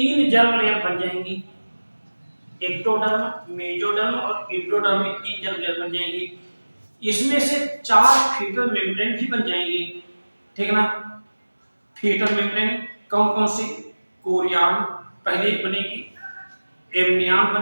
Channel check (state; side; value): inverted; both; correlation -1.00